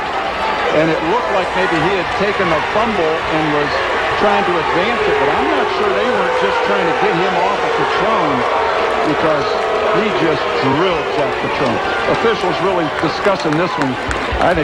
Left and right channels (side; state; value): both; identical; correlation 1.00